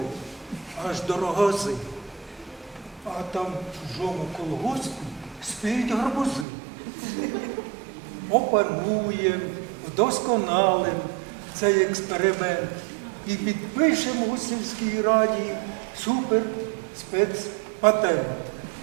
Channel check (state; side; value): drops out; left; at 6.5 s